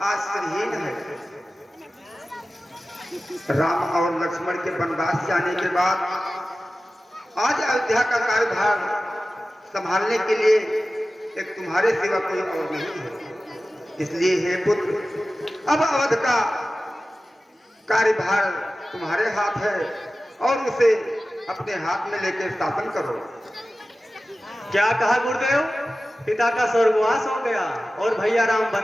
आश्रयहीन है। राम और लक्ष्मण के वनवास जाने के बाद आज अयोध्या का कार्यभार संभालने के लिए एक तुम्हारे सिवा कोई और नहीं है। इसलिए हे पुत्र, अब अवध का कार्यभार तुम्हारे हाथ है और उसे अपने हाथ में लेकर शासन करो। क्या कहा गुरुदेव? पिता का स्वर्गवास हो गया और भैया राम वन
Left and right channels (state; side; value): normal; both; correlation 0.95